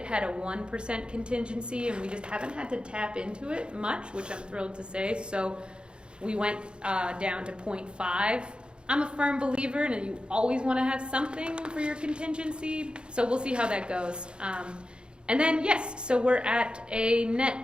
had a 1% contingency, and we just haven't had to tap into it much, which I'm thrilled to say. So we went down to 0.5. I'm a firm believer in you always want to have something for your contingency, so we'll see how that goes. And then, yes, so we're at a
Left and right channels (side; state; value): left; late; 0.053 ms